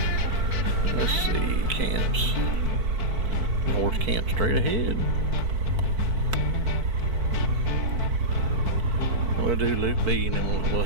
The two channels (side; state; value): left; late; 4.5 ms